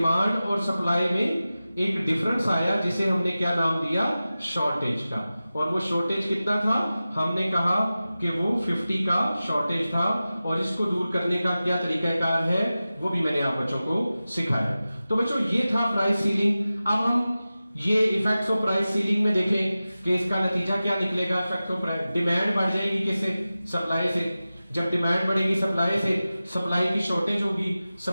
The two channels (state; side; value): inverted; both; correlation -0.95